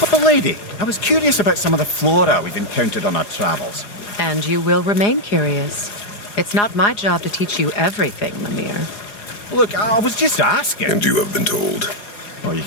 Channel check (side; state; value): right; late; 4.9 ms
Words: Lady, I was curious about some of the flora we've encountered on our travels. And you will remain curious. It's not my job to teach you everything, Mimir. Look, I was just asking. And you have been told. Oh, you